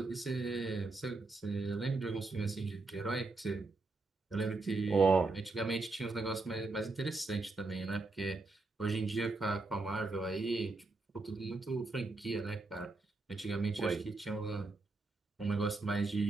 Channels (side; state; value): left; quieter; 3.4 dB